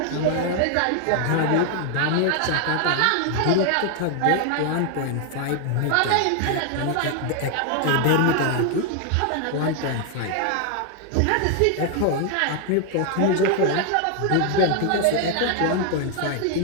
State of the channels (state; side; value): different; both; correlation 0.00